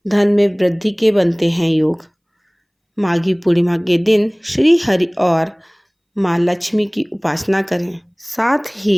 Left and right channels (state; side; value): identical; both; correlation 1.00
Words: धन में वृद्धि के बनते हैं योग। माघी पूर्णिमा के दिन श्री हरि और माँ लक्ष्मी की उपासना करें। साथ